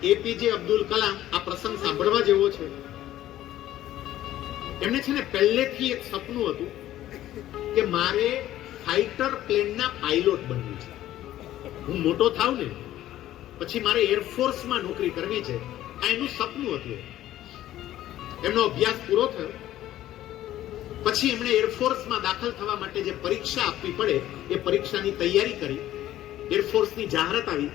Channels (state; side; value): quieter; right; 13.5 dB